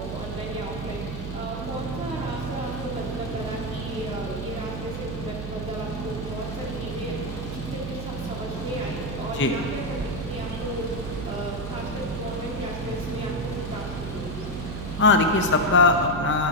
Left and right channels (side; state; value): right; noise; hum, 6 dB below the sound